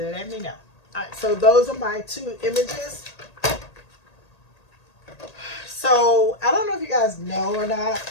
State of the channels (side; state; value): right; late; 1.8 ms